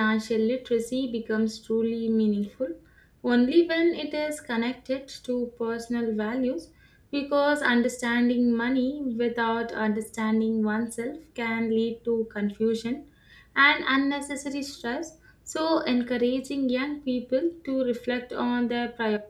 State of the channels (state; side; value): identical; both; correlation 1.00